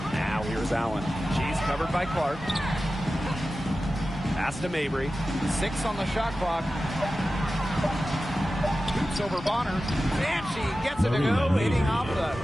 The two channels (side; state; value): both; normal; correlation 0.94